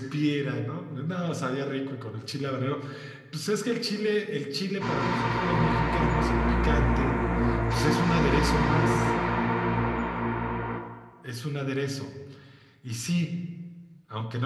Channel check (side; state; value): both; identical; correlation 1.00